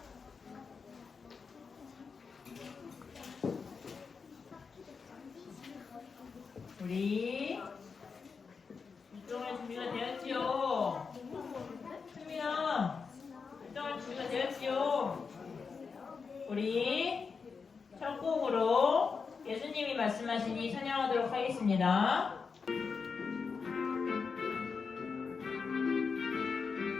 우리 일정할 준비가 되었지요. 수민아, 일정할 준비가 되었지요. 우리 첫 곡으로 예수님이 말씀하시니 찬양하도록 하겠습니다.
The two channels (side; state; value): right; quieter; 5.3 dB